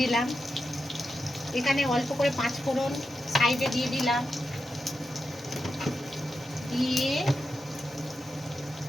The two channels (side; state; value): both; normal; correlation 0.89